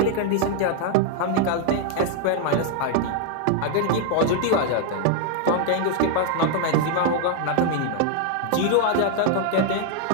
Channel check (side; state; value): both; different; correlation 0.00